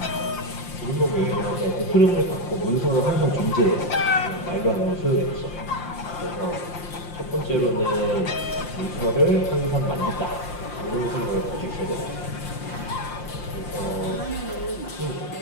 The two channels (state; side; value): late; right; 5.7 ms